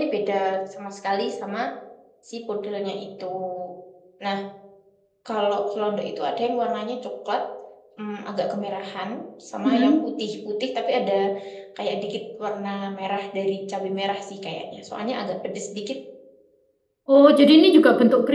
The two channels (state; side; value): identical; both; correlation 1.00